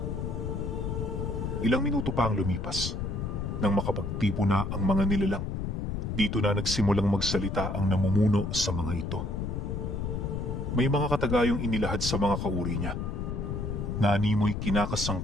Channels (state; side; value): noise; left; rumble, 3 dB below the sound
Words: Ilang minuto pa ang lumipas, nang makapagtipo na ang mga nilalang. Dito na nagsimulang magsalita ang namumuno sa mga ito. May mga katagayong inilahad sa mga kauri niya. Naanimoy